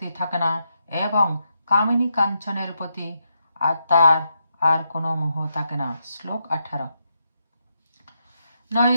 থাকে না এবং কামিনী কাঞ্চনের প্রতি তার আর কোনো মোহ থাকে না। শ্লোক 18।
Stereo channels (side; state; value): both; inverted; correlation -0.82